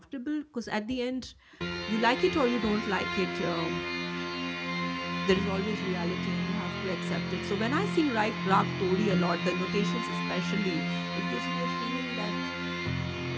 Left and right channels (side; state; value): both; identical; correlation 1.00